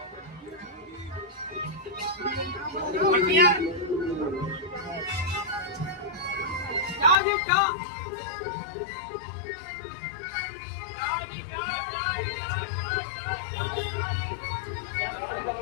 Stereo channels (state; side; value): drops out; right; at 7.2 s